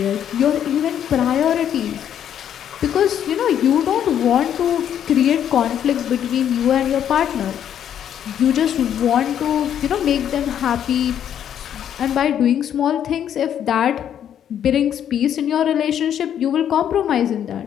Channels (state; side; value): quieter; right; 9.7 dB